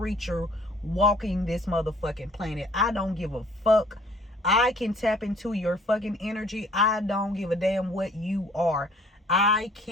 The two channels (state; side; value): normal; both; correlation 0.56